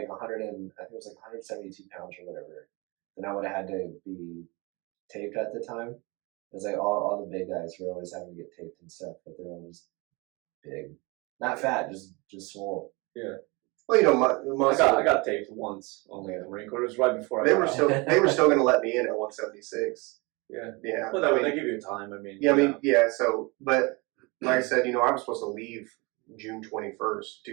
100 and I think it was like 172 pounds or whatever. Then I would have had to be taped at the time. It was like all the big guys were always having to get taped and stuff, but they were all just big, not fat, just swole. Yeah. Well, you know, my I got taped once only at the Marine Corps. It was right before I they got were out. still they were still going to let me in at 176. Yeah. Yeah. Well, they give you time. I mean. Yeah, I mean, yeah. So, but like I said, you know, I was supposed to leave June 21st,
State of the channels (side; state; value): left; quieter; 26.8 dB